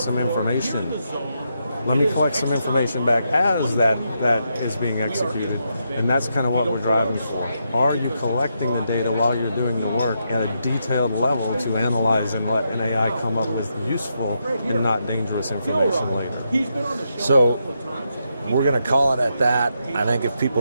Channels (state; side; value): inverted; both; correlation -0.82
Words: information. Let me collect some information back as that is being executed. And that's kind of what we're driving for. Are you collecting the data while you're doing the work at a detailed level to analyze and let an AI come up with useful and not dangerous information later? So we're going to call it at that. I think if